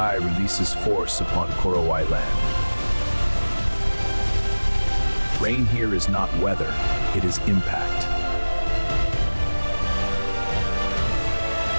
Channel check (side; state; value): both; inverted; correlation -1.00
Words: releases force upon Korowai land. Rain here is not weather, it is impact.